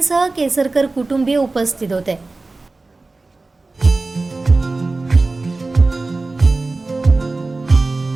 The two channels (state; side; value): quieter; left; 3.4 dB